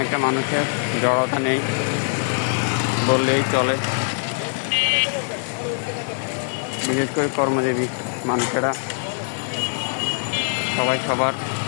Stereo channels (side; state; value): right; silent; digital silence